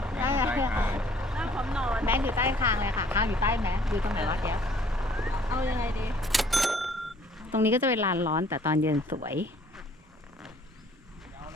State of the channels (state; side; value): normal; both; correlation 0.58